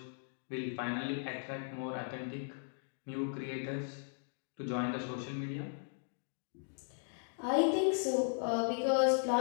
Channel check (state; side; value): silent; right; digital silence